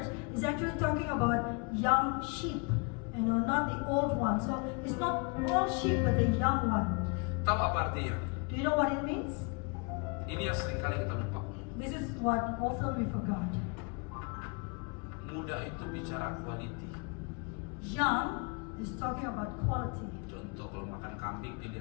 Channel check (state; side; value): quieter; right; 33.6 dB